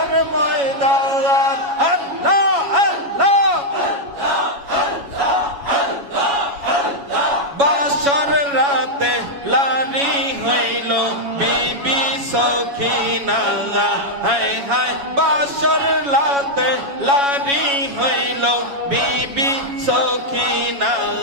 ময়দান আল্লাহ আল্লাহ বাসর রাতে লারি হইল বিবি সখিনা হায় হায় বাসর রাতে লারি হইল বিবি সখিনা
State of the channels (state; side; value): late; left; 7.2 ms